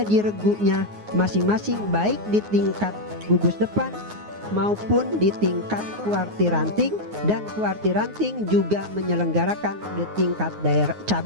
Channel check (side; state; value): left; late; 9.5 ms